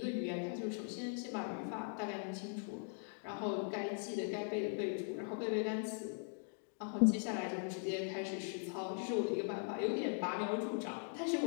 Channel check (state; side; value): silent; right; 51 dB below the other